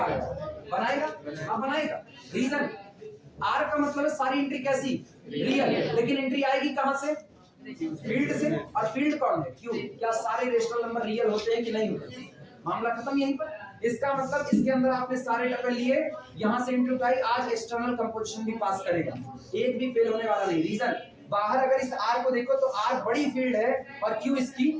रहे हैं, बनाएगा, हाँ बनाएगा। रीजन, R का मतलब है सारी एंट्री कैसी, रियल। लेकिन एंट्री आएगी कहां से, फील्ड से। और फील्ड कौन है, Q। क्या सारे रेशनल नंबर रियल होते हैं कि नहीं होते, मामला खत्म यहीं पर। इसका मतलब इसके अंदर आपने सारे टपल लिए, यहां से एंट्री उठाई, आज एक्सटर्नल कंपोजिशन भी पास करेगा, एक भी फेल होने वाला नहीं। रीजन, बाहर अगर इस R को देखो तो R बड़ी फील्ड है और Q इसकी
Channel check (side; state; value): both; identical; correlation 1.00